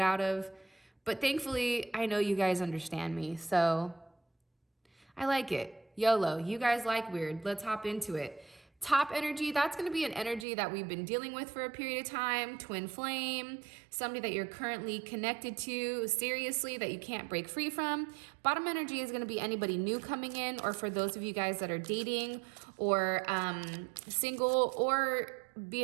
of. But thankfully, I know you guys understand me, so I like it. YOLO, you guys like weird. Let's hop into it. Top energy, that's going to be an energy that we've been dealing with for a period of time. Twin flame, somebody that you're currently connected to seriously that you can't break free from. Bottom energy is going to be anybody new coming in, or for those of you guys that are dating or single, or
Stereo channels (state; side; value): drops out; left; at 10.5 s